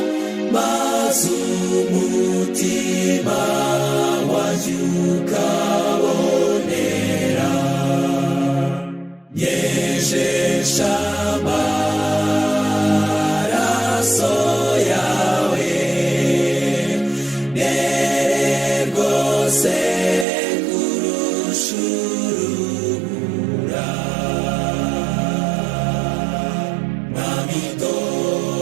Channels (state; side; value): drops out; left; at 20.2 s